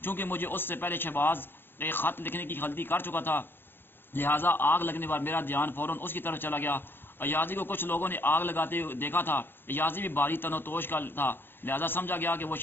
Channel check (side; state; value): right; late; 0.10 ms